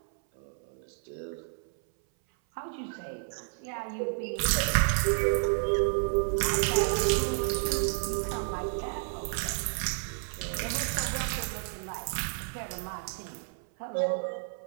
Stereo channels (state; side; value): silent; left; 57 dB below the other